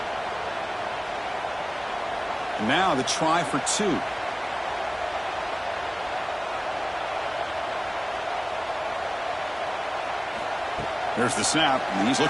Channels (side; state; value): both; identical; correlation 1.00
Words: Now the try for 2. There's the snap, and he's